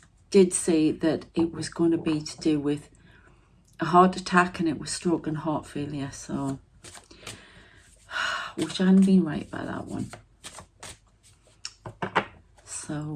did say that it was going to be to do with a heart attack, and it was stroke and heart failure. So wish I hadn't been right by that one. So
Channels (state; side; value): identical; both; correlation 1.00